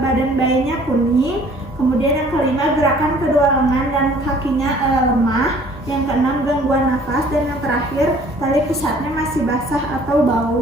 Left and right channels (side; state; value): both; normal; correlation 0.54